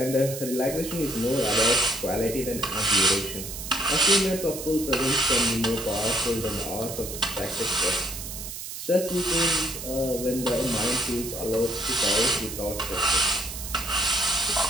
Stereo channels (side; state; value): right; noise; hiss, 8 dB below the sound